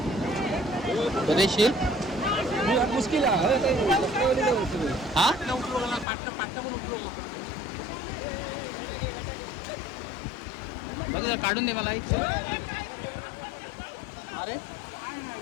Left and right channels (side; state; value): right; drops out; at 6.1 s